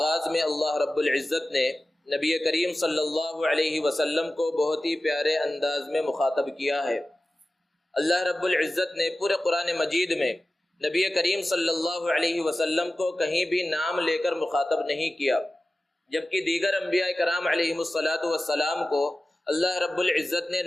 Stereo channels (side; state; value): both; normal; correlation 0.95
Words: میں اللہ رب العزت نے نبی کریم صلی اللہ علیہ وسلم کو بہت ہی پیارے انداز میں مخاطب کیا ہے۔ اللہ رب العزت نے پورے قرآن مجید میں نبی کریم صلی اللہ علیہ وسلم کو کہیں بھی نام لے کر مخاطب نہیں کیا، جبکہ دیگر انبیاء کرام علیہم الصلاۃ والسلام کو اللہ رب العزت نے